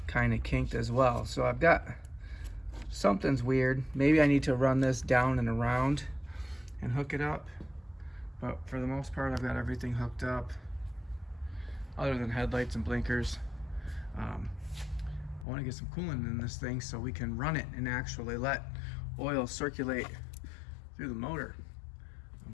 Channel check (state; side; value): drops out; right; at 15.5 s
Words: kind of kinked as well. So I've got, something's weird. Maybe I need to run this down and around and hook it up. But for the most part, I've got everything hooked up other than headlights and blinkers. I want to get some coolant in this thing so we can run it and actually let oil circulate through the motor.